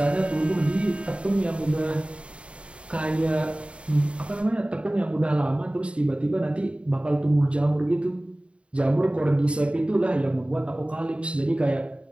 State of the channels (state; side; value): late; left; 0.059 ms